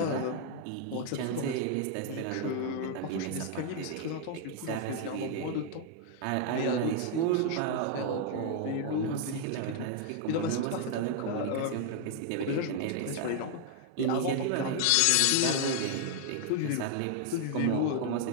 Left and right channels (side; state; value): both; different; correlation 0.00